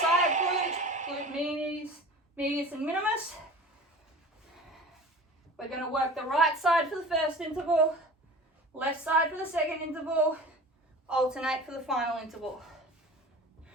glute medius and minimus. We're going to work the right side for the first interval, left side for the second interval, alternate for the final interval.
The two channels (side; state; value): both; normal; correlation 0.39